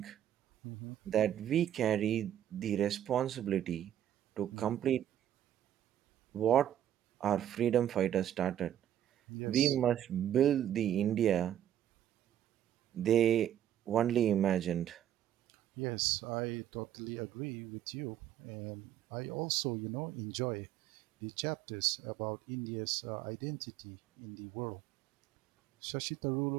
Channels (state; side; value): quieter; left; 11.0 dB